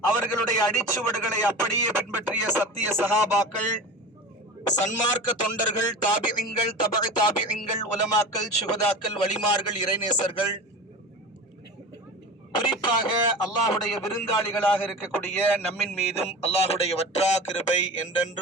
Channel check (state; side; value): normal; both; correlation 0.32